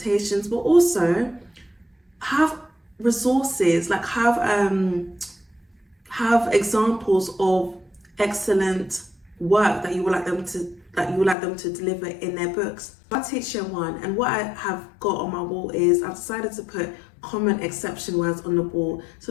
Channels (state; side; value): drops out; right; at 11.4 s